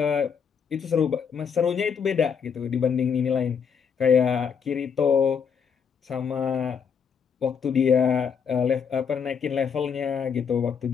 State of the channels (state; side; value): quieter; right; 6.8 dB